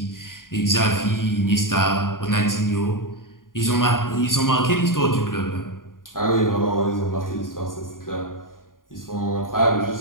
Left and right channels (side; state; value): right; late; 0.90 ms